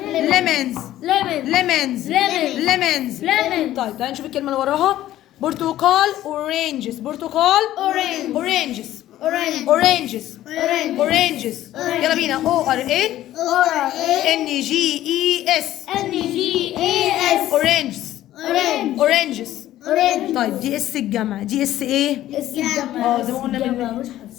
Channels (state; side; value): quieter; right; 13.7 dB